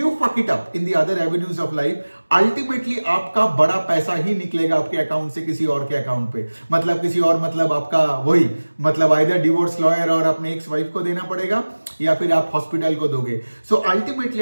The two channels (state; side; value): inverted; both; correlation -1.00